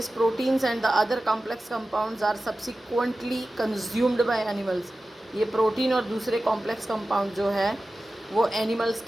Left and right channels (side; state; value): both; normal; correlation 0.95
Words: proteins and the other complex compounds are subsequently consumed by animals. ये प्रोटीन और दूसरे कॉम्प्लेक्स कंपाउंड जो है वो एनिमल्स